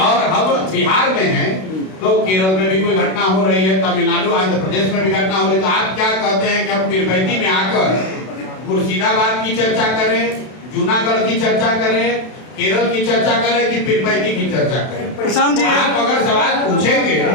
हम बिहार में हैं तो केरल में भी कोई घटना हो रही है, तमिलनाडु, आंध्र प्रदेश में भी घटना हो रही है, तो आप क्या कहते हैं कि हम पीरपैंती में आकर मुर्शिदाबाद की चर्चा करें, जूनागढ़ की चर्चा करें, केरल की चर्चा करें कि पीरपैंती की चर्चा करें? प्रशांत जी, आप अगर सवाल पूछेंगे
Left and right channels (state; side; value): late; right; 32 ms